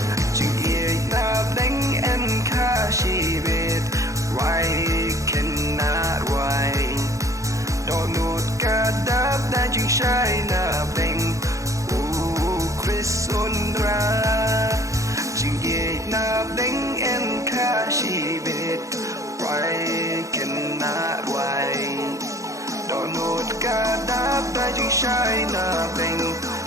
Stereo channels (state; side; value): late; left; 0.15 ms